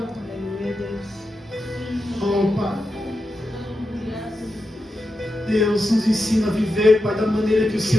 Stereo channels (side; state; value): both; normal; correlation 0.89